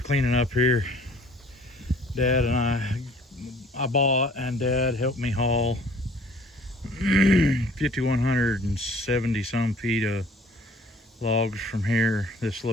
cleaning up here. Dad and I bought, and Dad helped me haul 5,170 some feet of logs from here, this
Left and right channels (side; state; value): both; normal; correlation 0.53